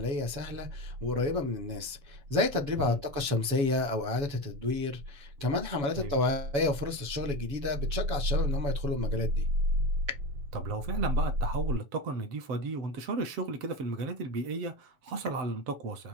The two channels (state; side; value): late; left; 7.1 ms